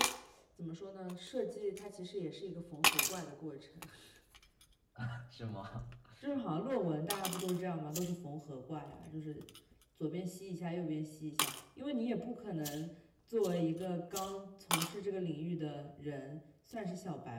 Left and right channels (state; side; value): identical; both; correlation 1.00